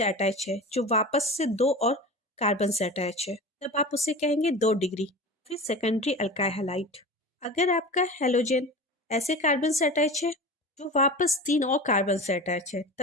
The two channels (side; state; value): both; normal; correlation 0.32